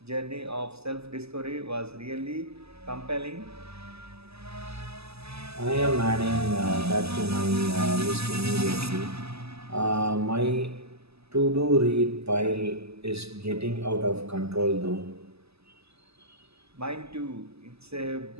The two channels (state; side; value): late; left; 0.79 ms